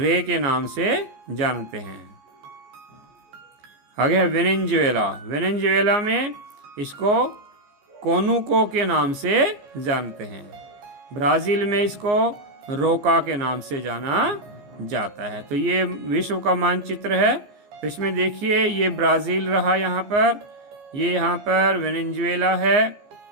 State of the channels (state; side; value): late; left; 14 ms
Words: के नाम से जानते हैं। आगे है वेनेजुएला में इसको कोनुको के नाम से जानते हैं। ब्राज़ील में इसको रोका के नाम से जाना जाता है। तो ये विश्व का मानचित्र है। तो इसमें देखिए, ये ब्राज़ील रहा यहाँ पर, ये यहाँ पर वेनेजुएला है,